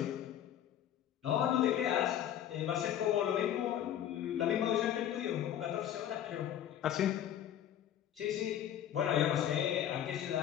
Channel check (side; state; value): right; quieter; 10.7 dB